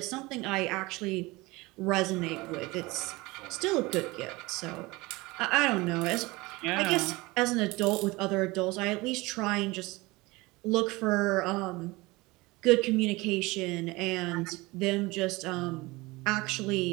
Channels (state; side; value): quieter; left; 22.4 dB